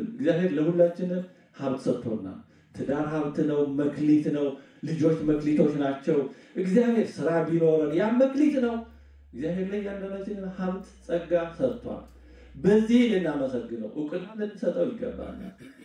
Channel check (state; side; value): identical; both; correlation 1.00